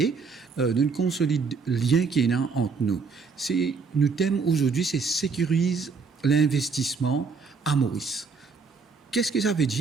d'un consolide lien qui est là entre nous. Nous thème aujourd'hui, c'est sécurise l'investissement à Maurice. Qu'est-ce que ça veut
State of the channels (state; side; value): quieter; left; 5.0 dB